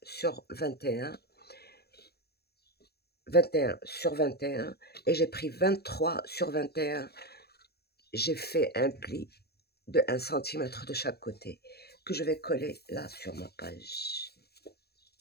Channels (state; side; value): late; right; 0.46 ms